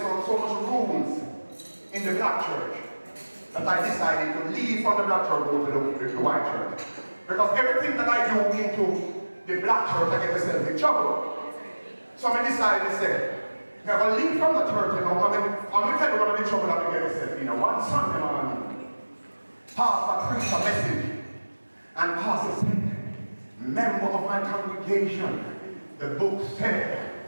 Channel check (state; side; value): inverted; both; correlation -1.00